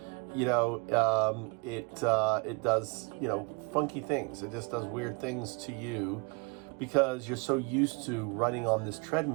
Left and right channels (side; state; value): left; quieter; 31.6 dB